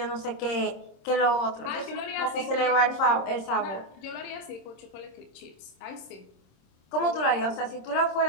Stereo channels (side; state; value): right; late; 26 ms